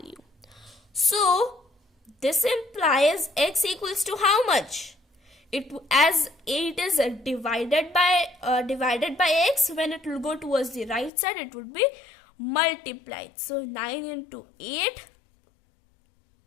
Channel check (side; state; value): right; drops out; at 11.1 s